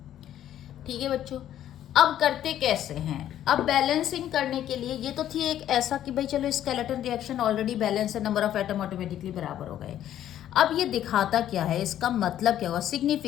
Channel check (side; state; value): right; quieter; 11.5 dB